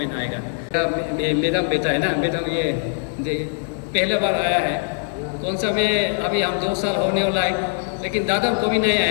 आएगा। मैडम बेटा है ना, मैडम ये पहला बार आया है, कौन सा में अभी हम 2 साल होने वाला है, लेकिन दादम को भी नहीं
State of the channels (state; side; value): silent; right; digital silence